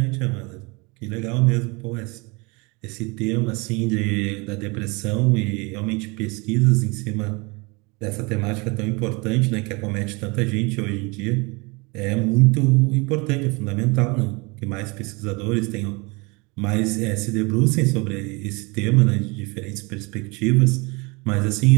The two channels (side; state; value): left; quieter; 27.7 dB